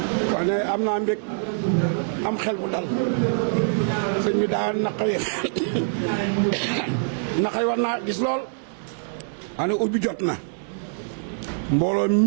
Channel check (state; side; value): silent; left; digital silence